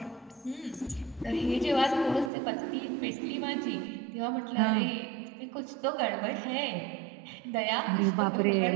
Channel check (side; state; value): left; drops out; at 2.3 s